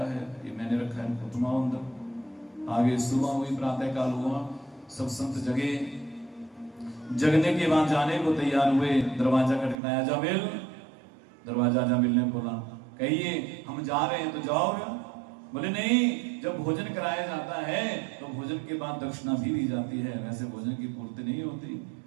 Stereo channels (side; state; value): left; drops out; at 9.8 s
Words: है, ये मैंने रखा है, तुम आओ अंदर। आगे सुबह हुई, प्रातः काल हुआ, सब संत जगे। जगने के बाद जाने को तैयार हुए, दरवाजा खटखटाया, अजामिल। दरवाजा अजामिल ने खोला, कहिए हम जा रहे हैं। तो जाओ। बोले नहीं, जब भोजन कराया जाता है तो भोजन के बाद दक्षिणा भी दी जाती है, वैसे भोजन की पूर्ति नहीं होती।